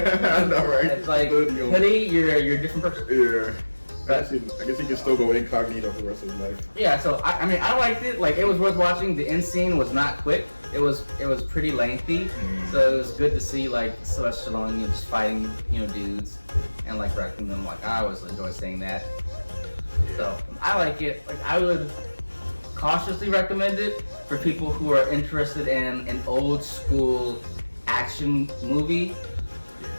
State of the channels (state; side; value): inverted; both; correlation -1.00